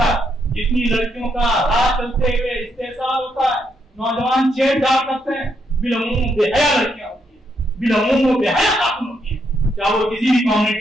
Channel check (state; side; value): normal; both; correlation 0.77